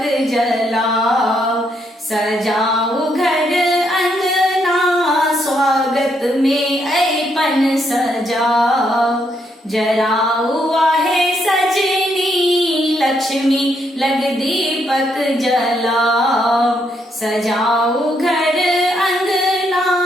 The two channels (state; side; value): normal; both; correlation 0.75